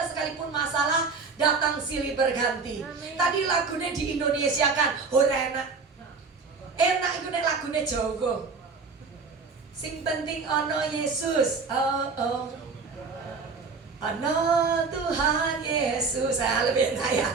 sekalipun masalah datang silih berganti. Tadi lagunya di Indonesia kan, ora enak itu nek lagunya Jawa. Sing penting ono Yesus, oh. Ono Tuhan Yesus, saya lebih enak ya.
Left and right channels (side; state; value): left; quieter; 4.7 dB